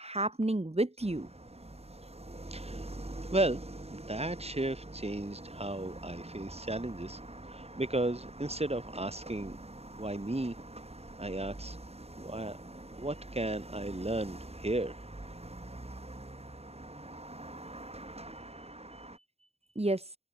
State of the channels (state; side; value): late; left; 0.30 ms